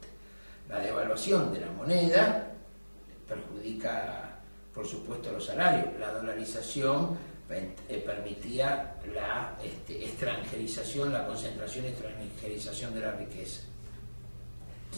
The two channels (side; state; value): both; inverted; correlation -1.00